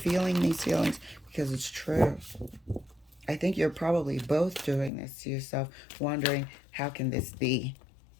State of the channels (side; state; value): right; drops out; at 4.9 s